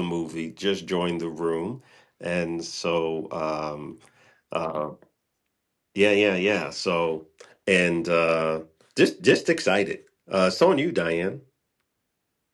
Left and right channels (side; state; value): both; identical; correlation 1.00